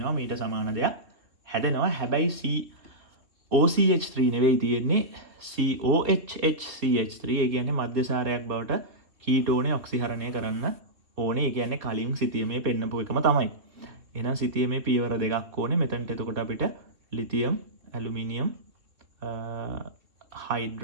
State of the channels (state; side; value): late; left; 3.2 ms